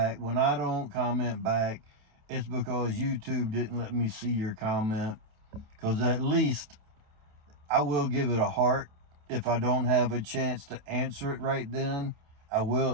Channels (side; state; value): left; late; 28 ms